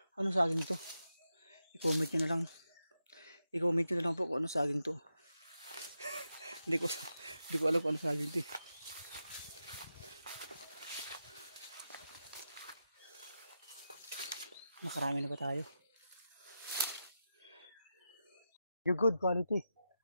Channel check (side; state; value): both; inverted; correlation -0.88